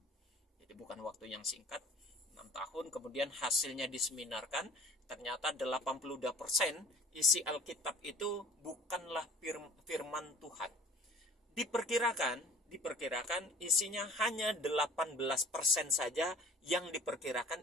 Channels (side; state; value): both; normal; correlation 0.47